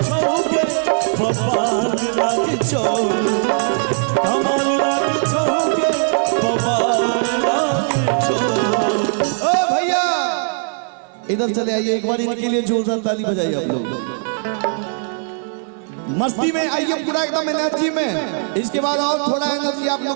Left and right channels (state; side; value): silent; left; digital silence